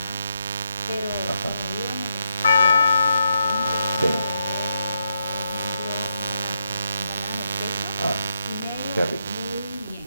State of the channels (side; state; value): both; inverted; correlation -0.82